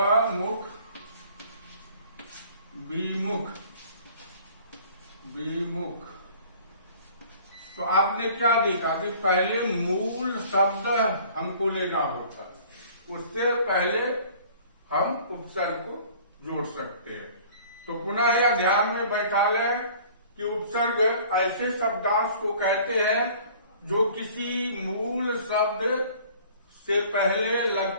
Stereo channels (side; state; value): both; inverted; correlation -0.50